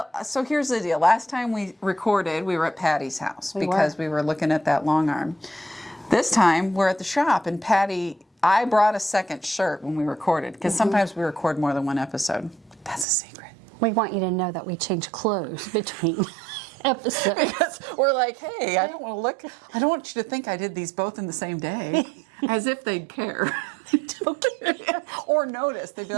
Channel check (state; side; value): drops out; left; at 13.1 s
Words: So here's the deal. Last time we recorded, we were at Patty's house because we were looking at that long arm. This time, we're at the shop, and I brought a second shirt when we recorded, because sometimes we record more than one episode. That's a secret. We want you to know that we change clothes between episodes. Because we're like, hey, I don't want you to think I did these both in the same day. As if they'd care. Or notice. They'd be